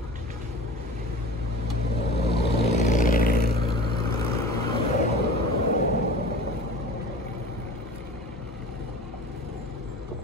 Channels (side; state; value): both; normal; correlation 0.38